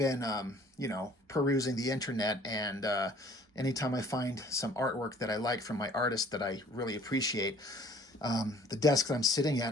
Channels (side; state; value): both; normal; correlation 0.55